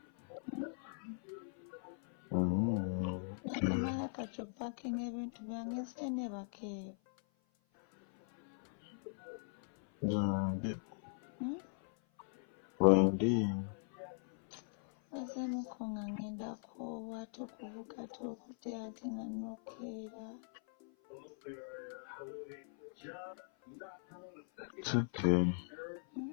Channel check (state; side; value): silent; right; 51 dB below the other